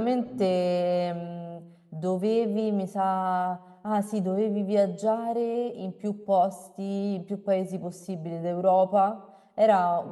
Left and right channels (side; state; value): both; identical; correlation 1.00